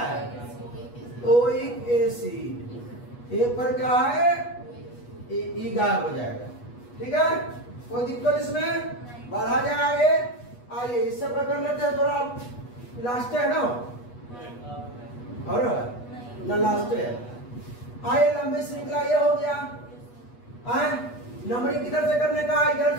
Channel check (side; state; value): right; late; 8.3 ms